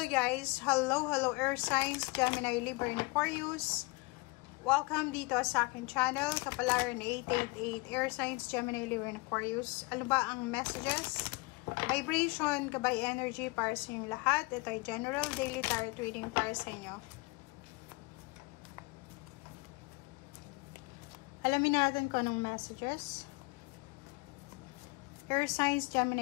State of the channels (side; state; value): right; quieter; 26.5 dB